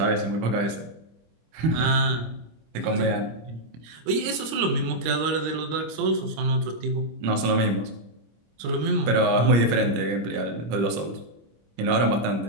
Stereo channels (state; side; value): late; left; 26 ms